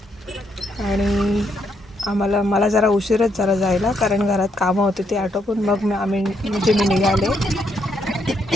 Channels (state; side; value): normal; both; correlation 0.76